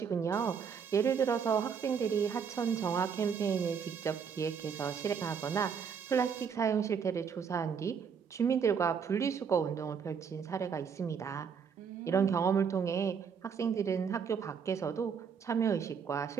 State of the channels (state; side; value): quieter; left; 6.7 dB